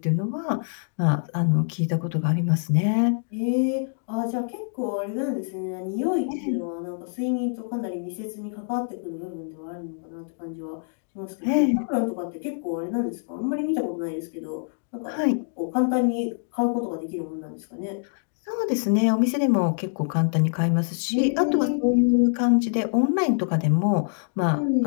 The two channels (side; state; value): right; silent; digital silence